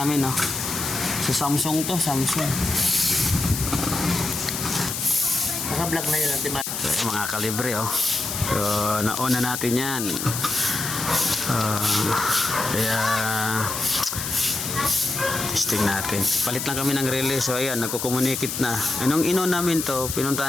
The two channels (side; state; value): left; noise; hiss, 4 dB below the sound